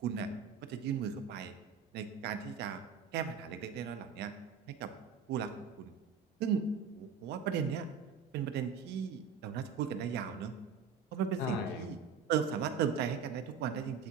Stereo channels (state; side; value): quieter; left; 6.2 dB